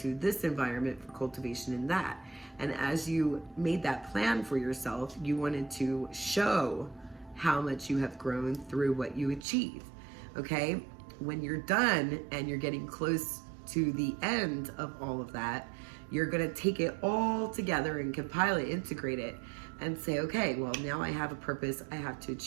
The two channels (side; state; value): left; drops out; at 9.5 s